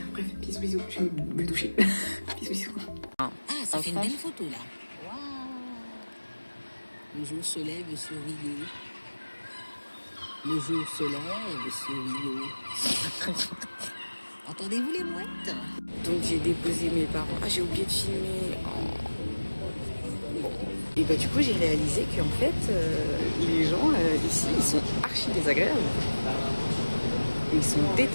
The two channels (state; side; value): inverted; both; correlation -1.00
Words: Bref, bisous, je vais me doucher. bisous. Ah, ça fait une belle photo là. Waouh. Le jour se lève sur Rio. Le jour se lève sur Rio. Entendez-vous les mouettes? Donc j'ai déposé mes parents. Ah, j'ai oublié de filmer. Oh. Bon. Et du coup, j'ai réalisé qu'en fait, les gens ici, ils sont archi désagréables. Ils sont